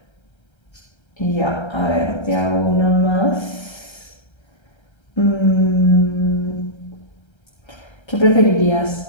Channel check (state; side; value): late; right; 1.3 ms